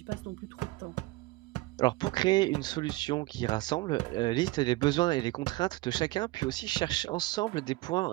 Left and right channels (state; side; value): quieter; left; 20.0 dB